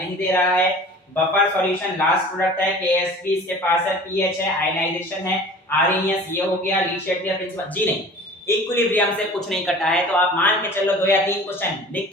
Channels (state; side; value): normal; both; correlation 0.43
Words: दे रहा है। बफर सॉल्यूशन लास्ट प्रोडक्ट है, केएसपी इसके पास है, पीएच है, आयनाइजेशन है, आरएनएस ये हो गया, ली शेड्यूलर प्रिंसिपल जी नहीं, इक्विलिब्रियम से कुछ नहीं कटा है। तो आप मान के चलो 2 या 3 क्वेश्चन लिख